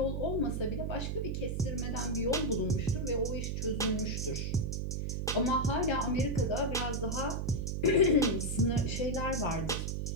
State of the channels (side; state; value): right; noise; hum, 2 dB below the sound